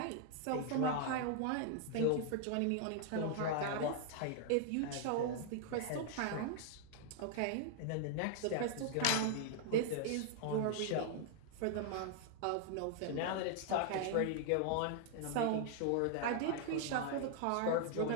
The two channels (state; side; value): different; both; correlation 0.00